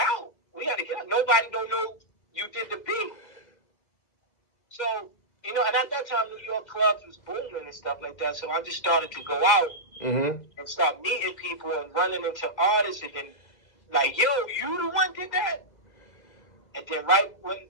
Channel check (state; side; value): late; right; 1.9 ms